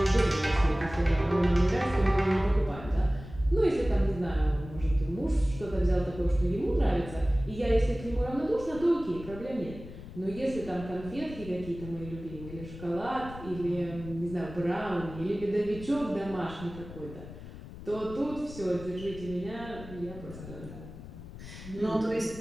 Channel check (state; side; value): noise; left; rumble, 14 dB below the sound